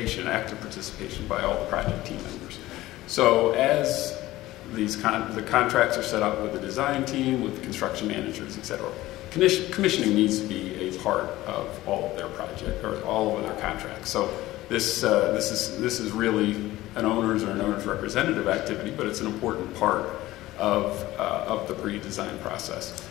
active participation by all the project team members. So as the contracts are set up with the design team, with the construction managers, etc., commissioning needs to be a part of all of their project, or all of their contracts. So this is really an owner's or an owner's representative activity, but it's an important part of the pre-design process.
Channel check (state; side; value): quieter; right; 16.8 dB